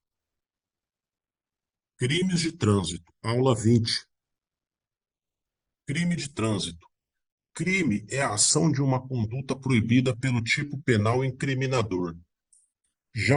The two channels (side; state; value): both; identical; correlation 1.00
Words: Crimes de trânsito. Aula 20. Crime de trânsito. Crime é a ação de uma conduta proibida pelo tipo penal incriminador. Já